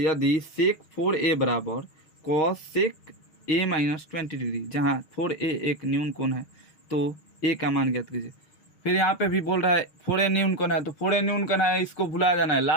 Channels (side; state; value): right; late; 6.4 ms